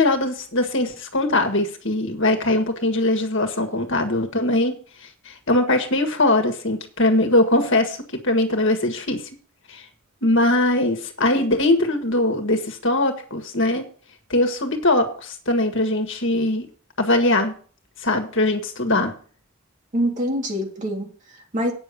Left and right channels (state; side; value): normal; both; correlation 0.01